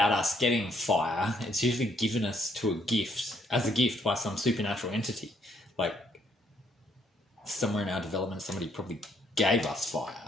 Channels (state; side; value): normal; both; correlation 0.69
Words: getting fire, it's usually given us as a gift by some supernatural entity. Like somewhere in our development, somebody probably gave us